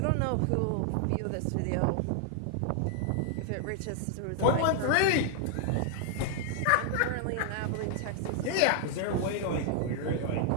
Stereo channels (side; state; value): both; different; correlation 0.00